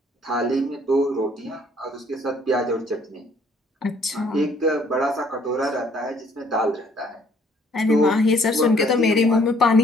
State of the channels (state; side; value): normal; both; correlation 0.62